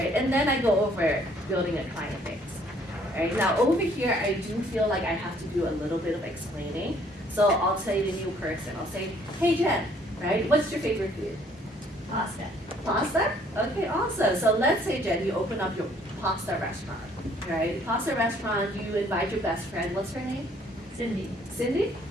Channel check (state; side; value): normal; both; correlation 0.62